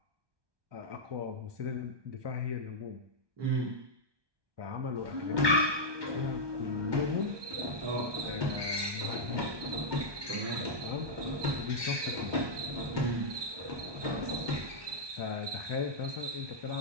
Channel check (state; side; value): late; left; 1.2 ms